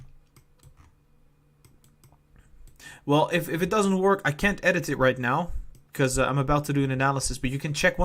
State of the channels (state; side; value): identical; both; correlation 1.00